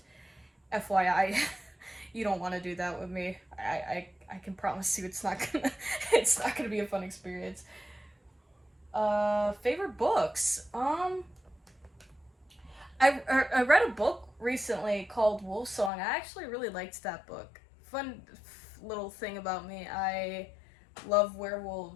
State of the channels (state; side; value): drops out; right; at 15.9 s